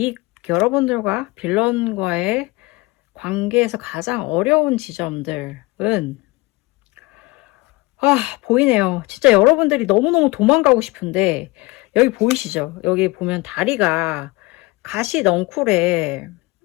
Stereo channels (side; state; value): right; quieter; 23.0 dB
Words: 여러분들과 빌런과의 관계에서 가장 어려운 지점들은 보이네요. 진짜 여러분들이 너무너무 도망가고 싶은데 여기 보이시죠? 여기 보면 다리가 가시 넝쿨에